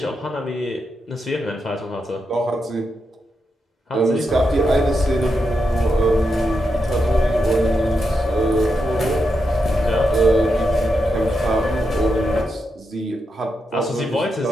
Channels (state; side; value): normal; both; correlation 0.85